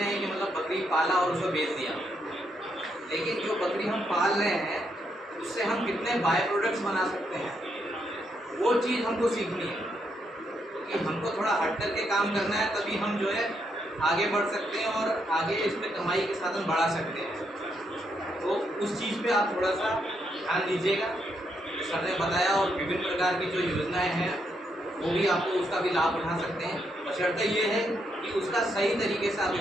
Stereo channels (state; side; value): normal; both; correlation 0.78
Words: हैं कि मतलब बकरी पाला और उसको बेच दिया, लेकिन जो बकरी हम पाल रहे हैं उससे हम कितने बाय प्रोडक्ट्स बना सकते हैं, वो चीज़ हमको सीखनी है। क्योंकि हमको थोड़ा हट करके काम करना है, तभी हम जो है आगे बढ़ सकते हैं और आगे इस पर कमाई के साधन बढ़ा सकते हैं। तो उस चीज़ पे आप थोड़ा सा ध्यान दीजिएगा। सर ने बताया, और विभिन्न प्रकार की जो योजनाएं हैं वो भी आपको उसका भी लाभ उठा सकते हैं। बशर्ते ये है कि उसका सही तरीके से आप